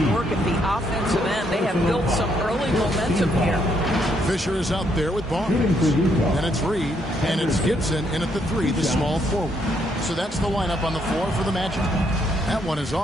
work at the offensive end. They have built some early momentum here. Fisher is out there with Barnes. And it's Reed. And it's Gibson in at the 3, the small forward. So that's the lineup on the floor for the Magic. That one is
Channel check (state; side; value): normal; both; correlation 0.73